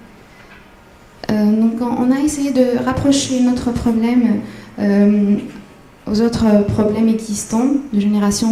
Donc on a essayé de rapprocher notre problème aux autres problèmes existants de génération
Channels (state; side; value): identical; both; correlation 1.00